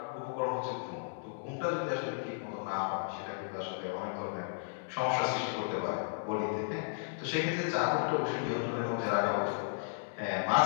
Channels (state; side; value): silent; right; digital silence